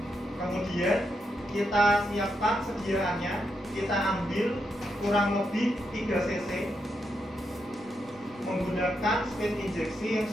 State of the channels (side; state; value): both; normal; correlation 0.82